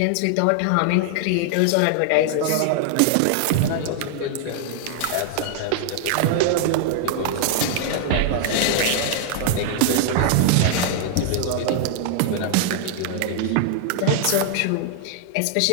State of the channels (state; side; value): different; both; correlation 0.00